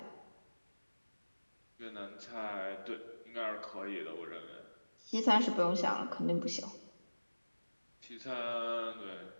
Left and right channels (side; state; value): both; inverted; correlation -1.00